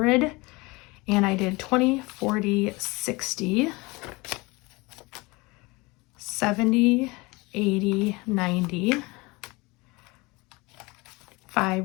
And I did 20, 40, 60, 70, 80, 90,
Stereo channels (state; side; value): quieter; right; 24.3 dB